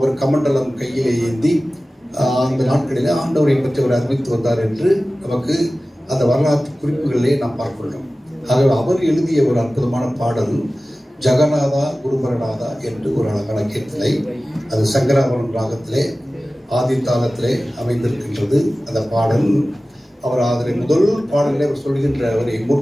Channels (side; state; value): both; normal; correlation 0.96